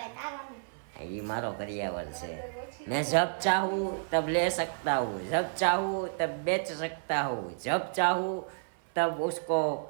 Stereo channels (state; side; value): silent; left; 57 dB below the other